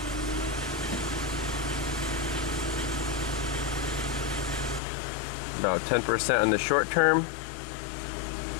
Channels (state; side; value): drops out; right; at 4.8 s